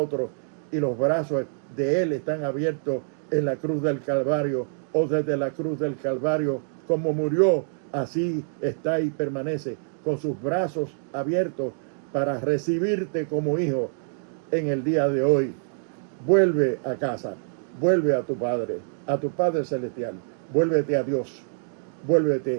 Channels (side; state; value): left; silent; digital silence